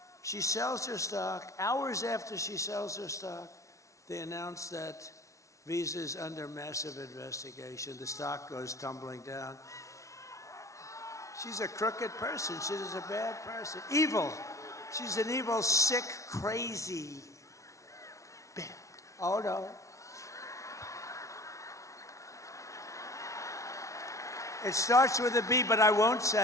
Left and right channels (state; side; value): late; right; 0.15 ms